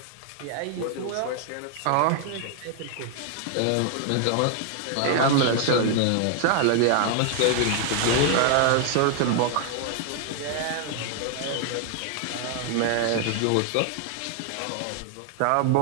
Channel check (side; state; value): both; different; correlation 0.00